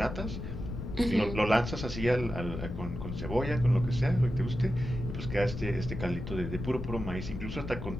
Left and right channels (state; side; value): noise; left; rumble, 7 dB below the sound